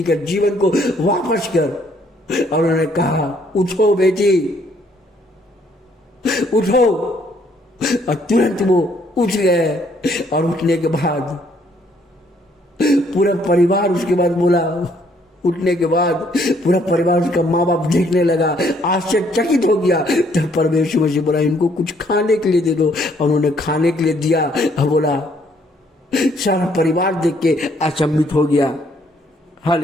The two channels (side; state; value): both; normal; correlation 0.66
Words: का जीवन को वापस कर। और उन्होंने कहा, उठो बेटी, उठो। और तुरंत वो उठ गए। और उठने के बाद पूरा परिवार, उसके बाद बोला, उठने के बाद पूरा परिवार, उसका माँ बाप देखने लगा, आश्चर्यचकित हो गया। तब परमेश्वर मसीह बोला, इनको कुछ खाने के लिए दे दो। और उन्होंने खाने के लिए दिया और बोला, सारा परिवार देख के अचंभित हो गया।